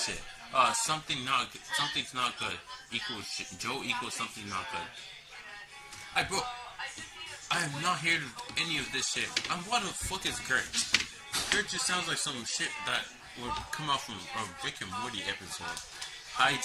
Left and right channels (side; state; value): both; identical; correlation 1.00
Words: Something's not good equals shit. Joe equals something not good. Hey, bro, I am not here to any of this shit. What the fuck is Gert? Gert just sounds like some shit that would come out from a Rick and Morty episode. Hi,